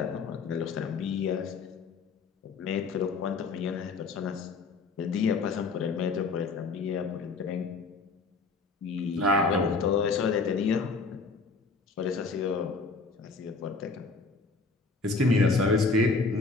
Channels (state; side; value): quieter; right; 4.0 dB